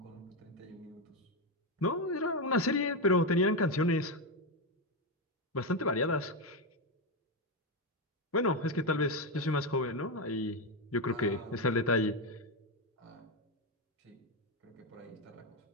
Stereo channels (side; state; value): both; normal; correlation 0.08